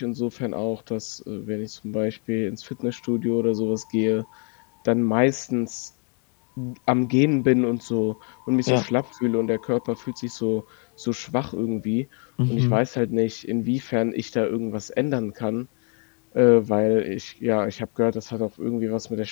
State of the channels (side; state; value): right; quieter; 38.9 dB